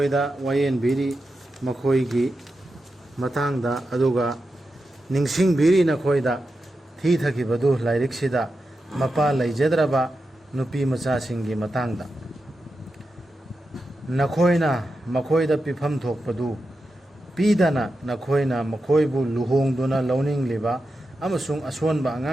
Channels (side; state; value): both; normal; correlation 0.89